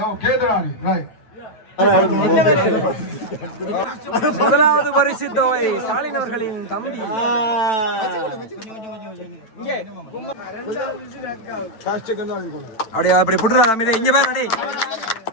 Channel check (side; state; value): right; late; 9.1 ms